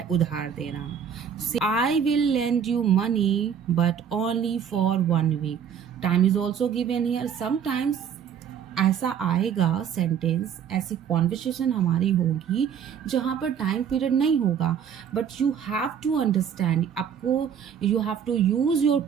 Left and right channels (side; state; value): left; quieter; 7.9 dB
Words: उधार देना. I will lend you money but only for 1 week. Time is also given here. Sometimes ऐसा आएगा sentence, ऐसी conversation हमारी होगी जहाँ पर टाइम पीरियड नहीं होगा, but you have to understand, आपको you have to use your